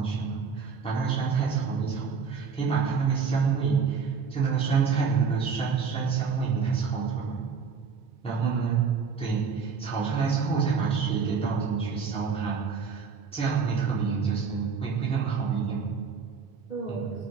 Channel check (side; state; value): left; quieter; 5.7 dB